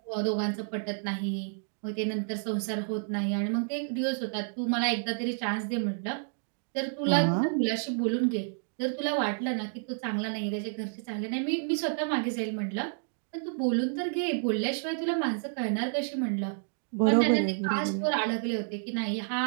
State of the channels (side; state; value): left; silent; digital silence